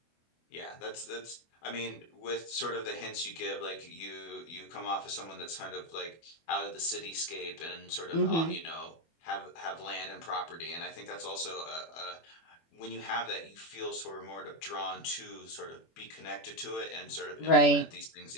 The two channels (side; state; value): right; late; 24 ms